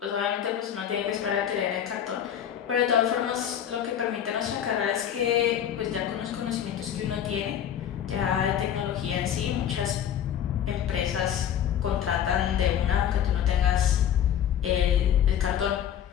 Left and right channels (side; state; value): right; quieter; 9.7 dB